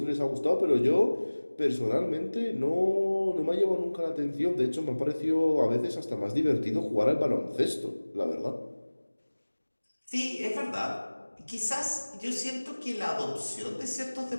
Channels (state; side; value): inverted; both; correlation -1.00